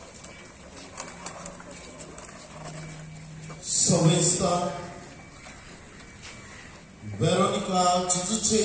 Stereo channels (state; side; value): identical; both; correlation 1.00